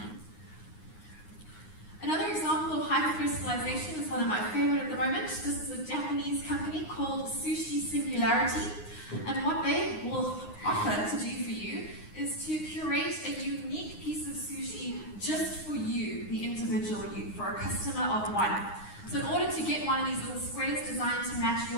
Another example of hyper-personalization is one of my favorite at the moment. This is a Japanese company called Sushi Singularity, and what they will offer to do for you is to curate a unique piece of sushi just for you, the individual you, for a customer of one. So in order to get one of these little squares designed to match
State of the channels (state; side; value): late; right; 9.6 ms